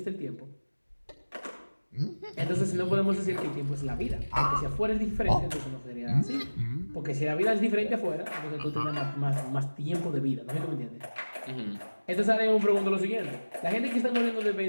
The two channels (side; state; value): both; inverted; correlation -1.00